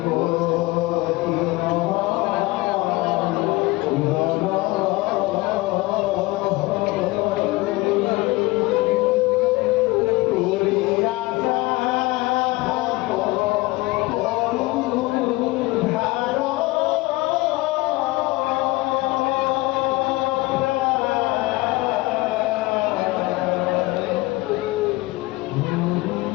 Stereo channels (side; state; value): right; quieter; 21.1 dB